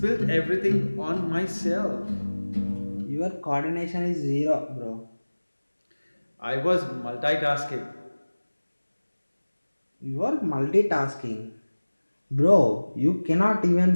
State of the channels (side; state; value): both; inverted; correlation -1.00